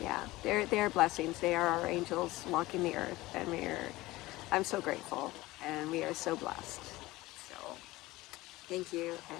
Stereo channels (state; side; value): quieter; right; 19.0 dB